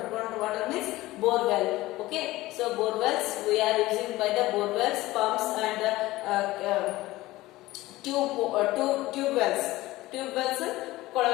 water means bore well. Okay, so So borewells we are using by the borewells, pumps and tube wells. Tube wells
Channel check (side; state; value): right; quieter; 18.2 dB